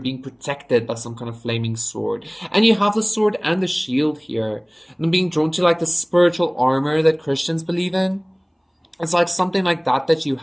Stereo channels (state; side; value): identical; both; correlation 1.00